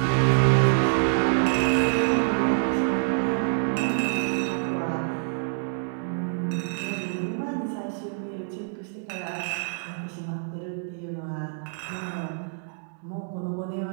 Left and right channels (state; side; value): silent; left; digital silence